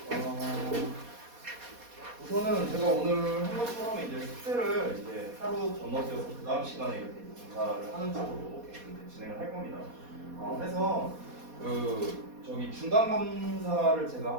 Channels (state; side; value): late; left; 4.2 ms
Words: 우선은 제가 오늘 한 것처럼 이제 숙제를 이제 하루 건너뛰어서 그 다음 시간에 이렇게 검사를 하는 쪽으로 이제 진행을 할 겁니다. 해서 저기 중간 검사를 제가